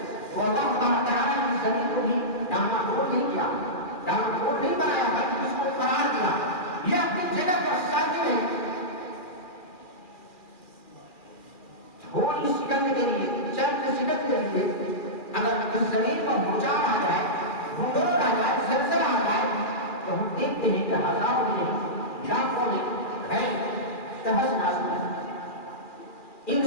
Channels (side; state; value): right; late; 2.4 ms